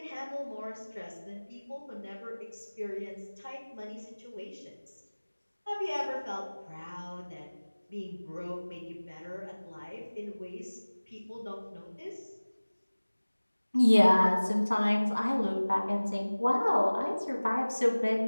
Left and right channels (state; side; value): inverted; both; correlation -1.00